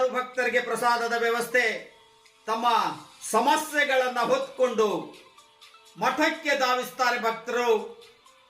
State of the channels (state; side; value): identical; both; correlation 1.00